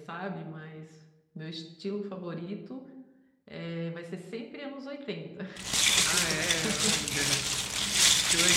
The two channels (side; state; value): both; identical; correlation 1.00